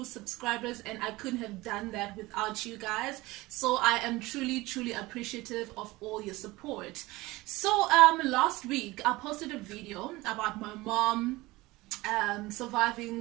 subscribers, and I couldn't have done that without you guys. So I am truly appreciative of all your support. So last week I posted a video about my mom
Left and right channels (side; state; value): left; quieter; 20.4 dB